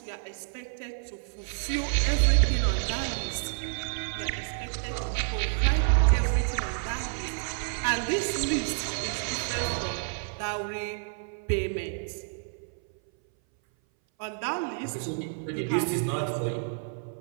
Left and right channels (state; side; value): silent; left; 57 dB below the other